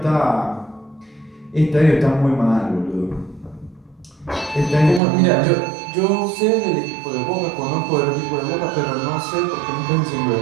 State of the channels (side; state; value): left; drops out; at 5.0 s